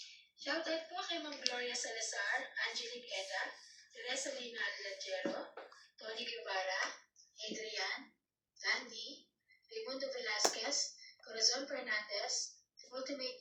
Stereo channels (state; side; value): identical; both; correlation 1.00